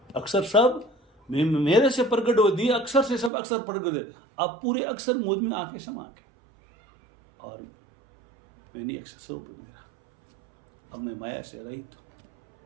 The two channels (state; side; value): drops out; left; at 3.3 s